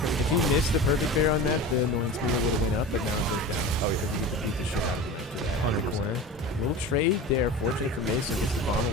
If he missed the perfect parry on that, the annoyance meter would have went up, but now it goes down. Oh, because we get to beat the shit out of him after that. On the corner. Little trade there. Fortunate for Mason. Gets the bomb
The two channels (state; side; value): normal; both; correlation 0.32